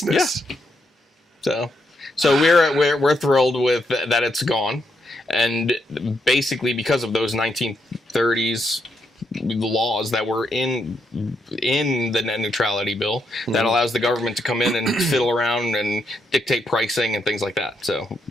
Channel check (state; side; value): normal; both; correlation 0.79